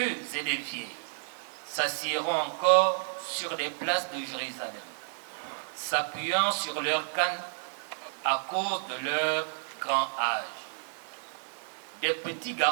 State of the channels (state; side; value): silent; left; digital silence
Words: et des vieilles s'assiéront encore sur les places de Jérusalem, s'appuyant sur leurs cannes à cause de leur grand âge. Des petits